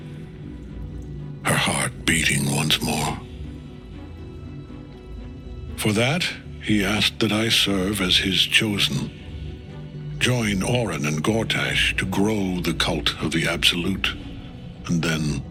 her heart beating once more. For that, he asked that I serve as his chosen. Join Orin and Gortash to grow the cult of the Absolute, and then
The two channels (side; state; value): both; identical; correlation 1.00